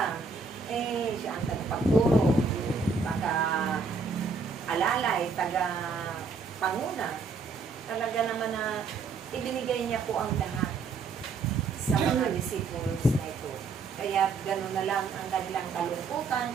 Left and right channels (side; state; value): left; quieter; 4.6 dB